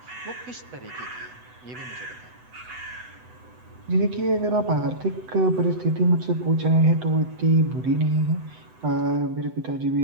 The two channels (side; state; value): left; late; 8.0 ms